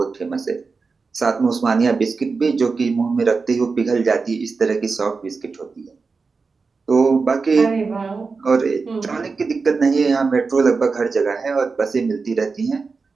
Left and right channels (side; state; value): left; quieter; 4.5 dB